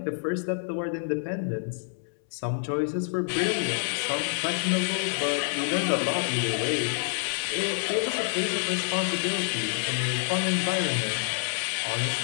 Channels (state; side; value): silent; right; 60 dB below the other